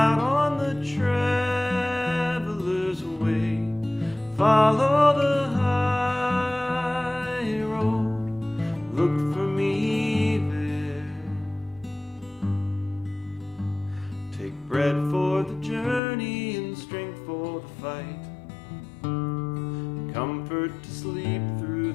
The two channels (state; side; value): drops out; right; at 16.0 s